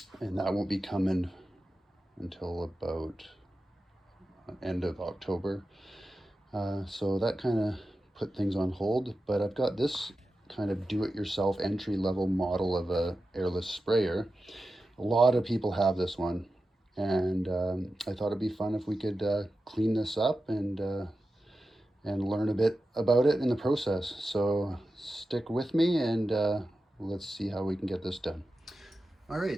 and that won't be coming until about end of October. So that kind of put things on hold, but I've got this kind of do-it-yourself entry-level model of a airless sprayer. A lot of people have this one, and I thought it'd be fun if we could clean this up and learn a bit about it in the process. So stick with me and let's see how we can get this done. All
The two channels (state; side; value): normal; both; correlation 0.92